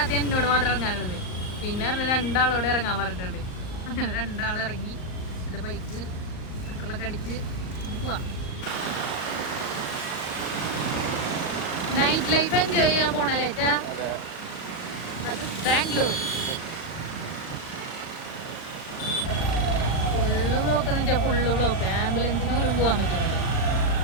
എന്നോട് മാത്രം ഇറങ്ങാനുള്ളത്. പിന്നെ രണ്ടാളോടെ ഇറങ്ങാൻ പറഞ്ഞിട്ടുണ്ട്. അങ്ങനെ രണ്ടാൾ ഇറങ്ങി എൻ്റെ ബൈക്ക് പെട്രോളൊക്കെ അടിച്ച് പോവാം. നൈറ്റ് ലൈഫ് എൻജോയ് ചെയ്യാൻ പോണല്ലേ ചാ? ബാംഗ്ലൂർ ഫുള്ള് ബ്ലോക്ക് എന്ന് വെച്ചാൽ ഫുള്ള് ബ്ലോക്ക്. ആംബുലൻസിന് പോലും പോകാൻ പറ്റും.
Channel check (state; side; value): late; right; 39 ms